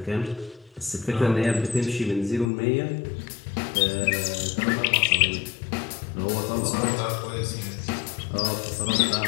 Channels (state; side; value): drops out; right; at 2.5 s